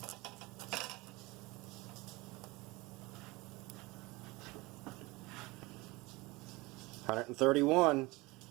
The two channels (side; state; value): left; quieter; 22.9 dB